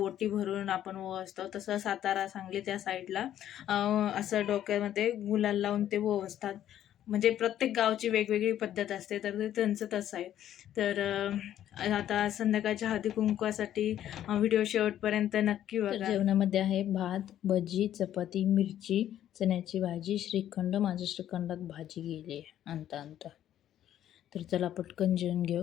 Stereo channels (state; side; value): quieter; right; 11.4 dB